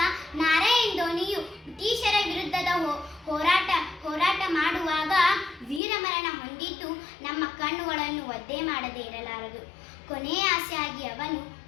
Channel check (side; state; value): right; drops out; at 5.8 s